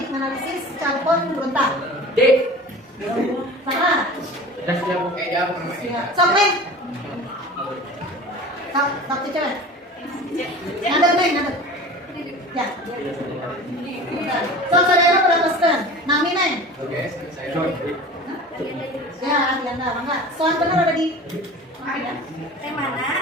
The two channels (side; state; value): both; normal; correlation 0.38